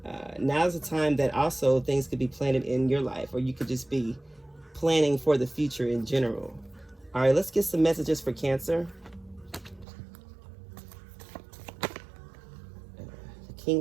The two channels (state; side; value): drops out; left; at 9.9 s